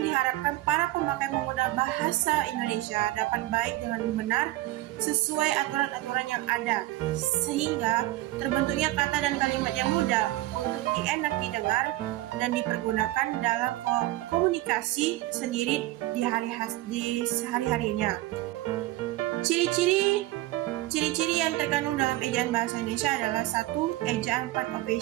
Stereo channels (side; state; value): left; quieter; 17.1 dB